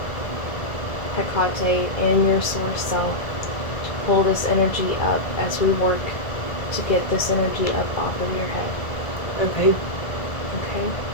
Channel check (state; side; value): late; right; 1.9 ms